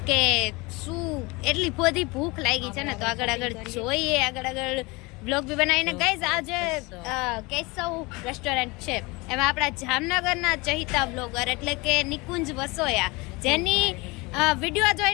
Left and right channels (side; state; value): right; quieter; 24.9 dB